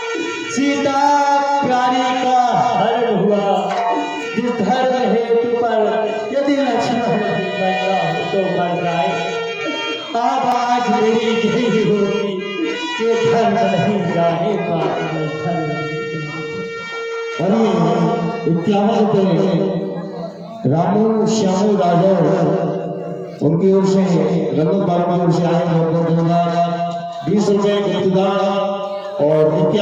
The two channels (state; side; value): identical; both; correlation 1.00